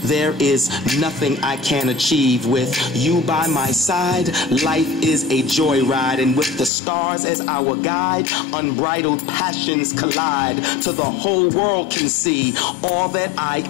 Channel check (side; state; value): right; drops out; at 6.7 s